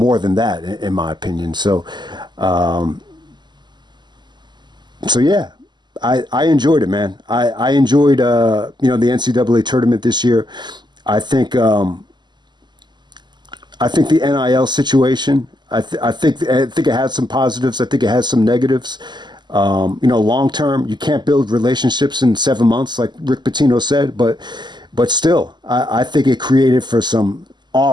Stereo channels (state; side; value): late; left; 0.21 ms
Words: than that, in my opinion. So, yeah, I enjoyed it, man. I enjoyed, the NCAA tournament this year. I think the NIL situation, I think it has some positives. I think it has some negatives. Long term, you can't build relationships in 7 months, like Rick Pitino said, but still, I think it created for some